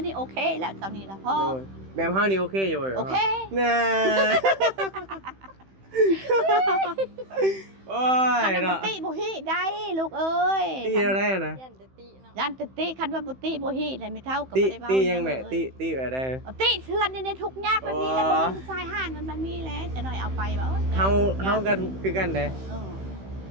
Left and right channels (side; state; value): left; late; 15 ms